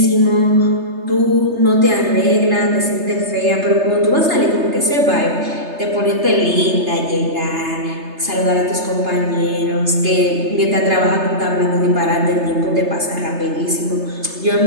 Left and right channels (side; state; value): left; late; 3.3 ms